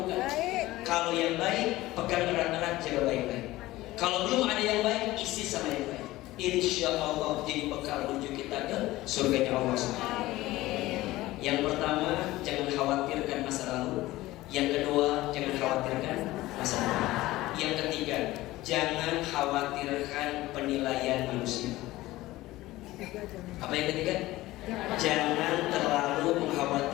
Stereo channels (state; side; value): quieter; right; 17.6 dB